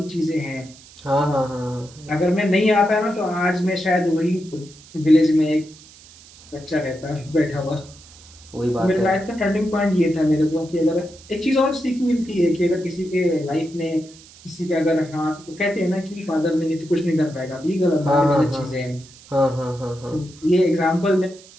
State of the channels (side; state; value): right; noise; hiss, 22 dB below the sound